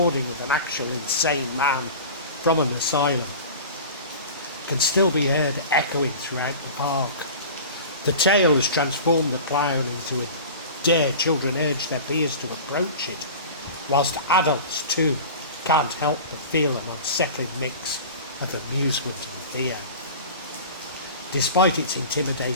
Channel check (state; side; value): inverted; both; correlation -0.36